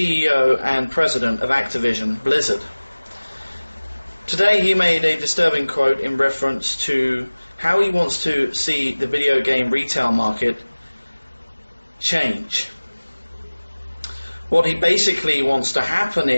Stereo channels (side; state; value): both; inverted; correlation -1.00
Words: and president of Activision Blizzard. Today he made a disturbing quote in reference to how he wants to see the video game retail market change. What he basically wants to happen